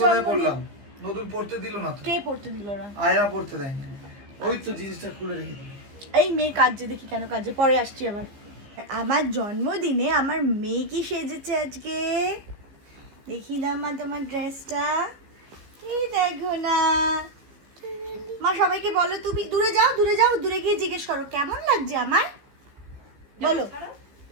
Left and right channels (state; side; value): late; left; 15 ms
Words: জন্মদিন? নতুন পড়তে দিল না তো। কে পড়তে দিল না? আয়রা পড়তে দেয়নি। ওই তো জিনিসটা খুলে রেখে দিল। এই মেয়ে কাজে, দেখি কেন কাজে, পরে আসছি আবার। আমার জন্মদিনে আমার মেয়ে কি সেজেছে আজকে, দেখি না মা তোমার ড্রেসটা। এই দেখো না মা, সবাইকে বলো, তুমি দূরে যাও, দূরে যাও, দূরে গিয়ে জিজ্ঞেস করো কেমন লাগছে আমার। বলো,